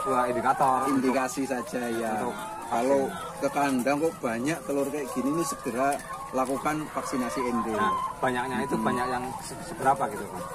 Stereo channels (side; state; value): both; identical; correlation 1.00